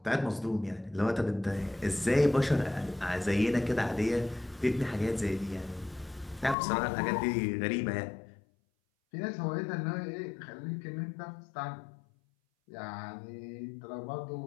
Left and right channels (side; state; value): right; drops out; at 6.6 s